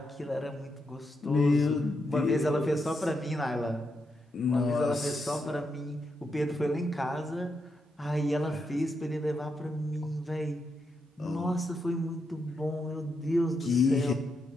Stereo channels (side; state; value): both; normal; correlation 0.83